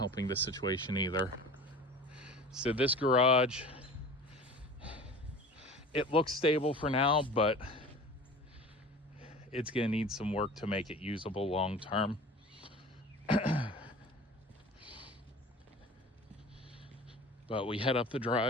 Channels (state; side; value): normal; both; correlation 0.39